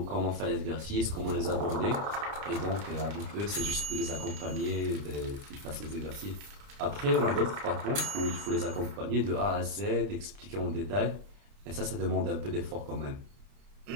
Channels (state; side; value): late; left; 30 ms